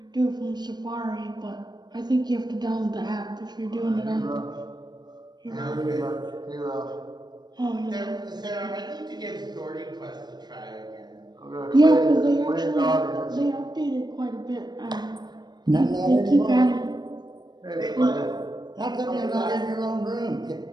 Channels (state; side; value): late; left; 0.20 ms